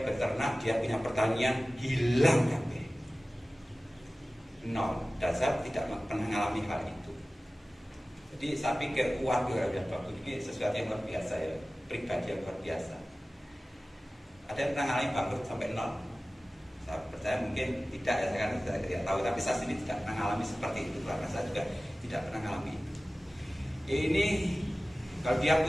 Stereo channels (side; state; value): both; normal; correlation 0.97